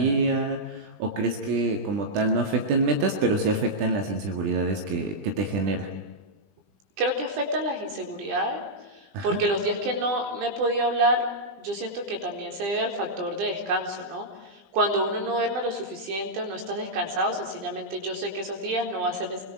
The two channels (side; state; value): left; late; 20 ms